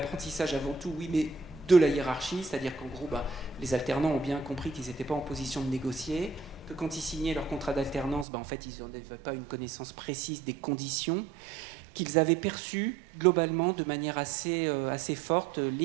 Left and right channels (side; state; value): left; drops out; at 8.2 s